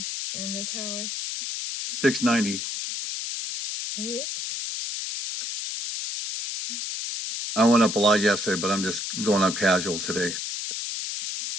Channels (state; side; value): noise; left; hiss, 5 dB below the sound